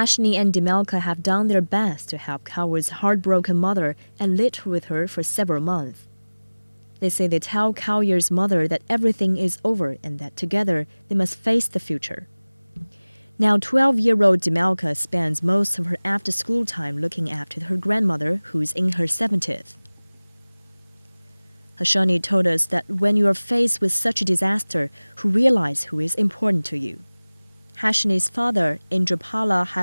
and Dimalka have done their best to help Kauya's heartbroken mother and lived with her for several months. They say they tell Kaoyer's mother that everything is over and that together they must face the future. Now 12-year-old Demelka spends most of her after-school time looking after her grandmother, who's in her 70th. Hashani told us that when you are faced with such a disaster, you realize who is important to you. Hashani's father, Indrapala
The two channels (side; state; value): both; inverted; correlation -1.00